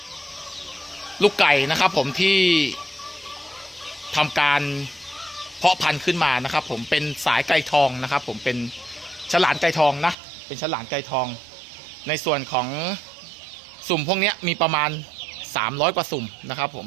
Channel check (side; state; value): left; drops out; at 10.2 s